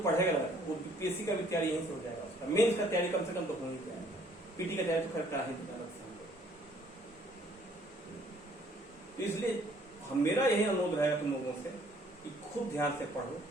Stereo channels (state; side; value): normal; both; correlation 0.61